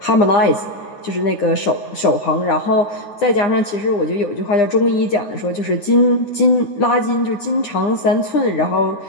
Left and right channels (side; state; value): right; late; 9.9 ms